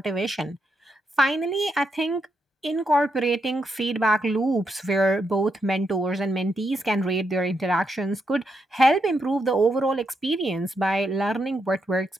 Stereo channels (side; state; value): both; normal; correlation 0.81